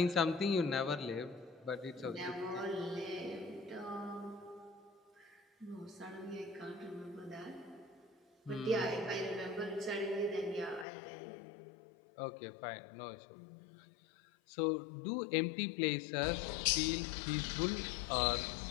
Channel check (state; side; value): drops out; right; at 10.9 s